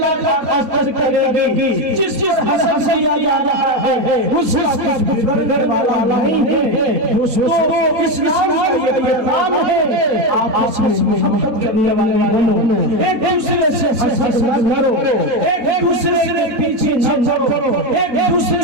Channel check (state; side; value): late; left; 4.1 ms